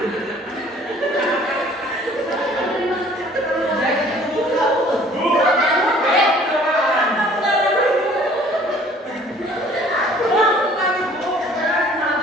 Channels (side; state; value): both; normal; correlation 0.54